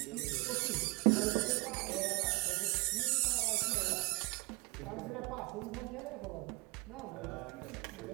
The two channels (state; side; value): quieter; left; 28.0 dB